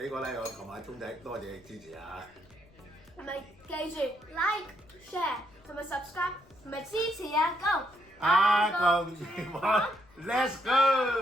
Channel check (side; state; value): left; noise; rumble, 28 dB below the sound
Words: 個 like 我同埋鐘仔，多謝你支持啊！係咪記住 like、share 同埋 subscribe 同埋支持啊？Go！阿公電話 ，Let's